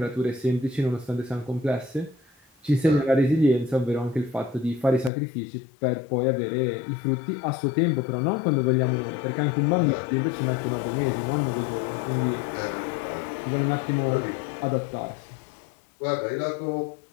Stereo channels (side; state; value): right; drops out; at 5.1 s